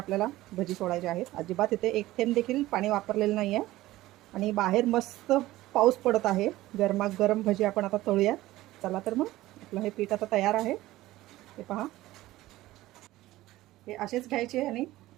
भजी सोडायचे आहेत. अजिबात इथे एक थेंब देखील पाणी वापरलेलं नाही आहे. आणि बाहेर मस्त पाऊस पडत आहे. गरमागरम भजी आपण आता तळूयात. चला तर मग आपलं हे पीठ आता तयार आहे. हे पहा, हे असेच घ्यायचे आणि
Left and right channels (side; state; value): left; quieter; 16.7 dB